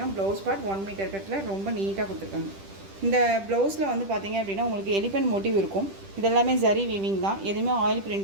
ப்ளவுஸ் பார்ட் 1 மீட்டர் கட்டில் ரொம்ப நீட்டாக கொடுத்துருக்காங்க. இந்த ப்ளவுஸில் வந்து பார்த்திங்க அப்படின்னா உங்களுக்கு எலிஃபென்ட் மோட்டிவ் இருக்கும். இதெல்லாமே ஜரி வீவிங் தான். எதுவுமே ஆயில்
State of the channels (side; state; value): left; late; 10 ms